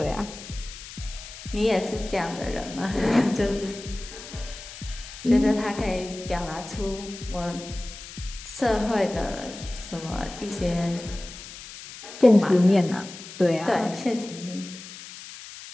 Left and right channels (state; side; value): noise; left; hiss, 14 dB below the sound